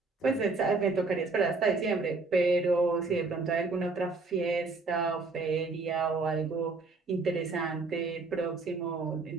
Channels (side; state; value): left; quieter; 3.8 dB